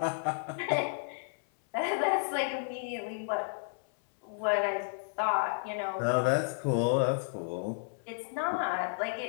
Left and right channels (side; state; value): right; silent; 56 dB below the other